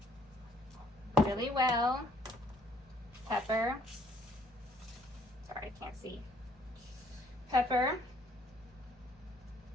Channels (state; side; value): normal; both; correlation 0.63